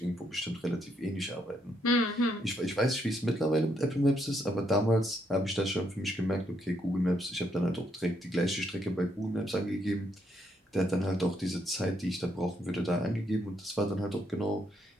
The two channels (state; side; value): normal; both; correlation 0.75